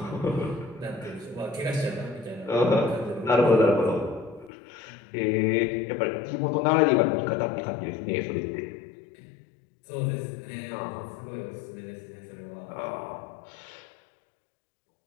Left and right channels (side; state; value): right; drops out; at 4.5 s